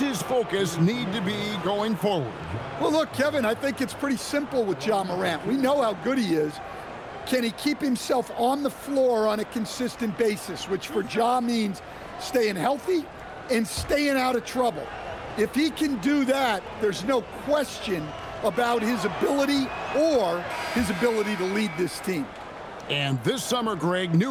focus need to be going forward? Well, look, Kevin, I think it's pretty simple with Ja Morant. We know how good he is. Can he keep himself on the floor on a consistent basis, which for Ja means staying healthy and staying out of trouble. If he can do that, there's no question about his ability or his ability to lead this team. And this summer, Greg,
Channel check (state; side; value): identical; both; correlation 1.00